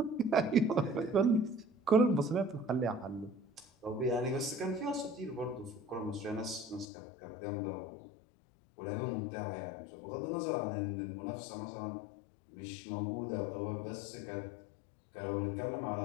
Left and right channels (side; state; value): right; drops out; at 6.9 s